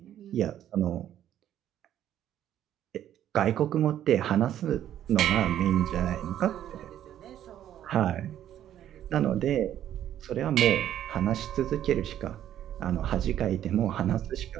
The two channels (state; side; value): quieter; left; 11.2 dB